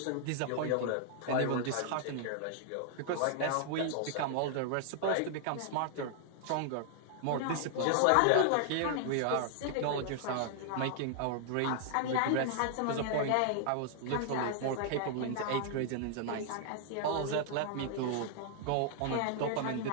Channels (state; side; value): different; both; correlation 0.00